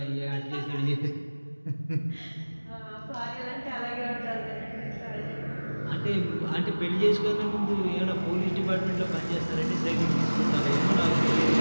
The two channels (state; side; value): inverted; both; correlation -1.00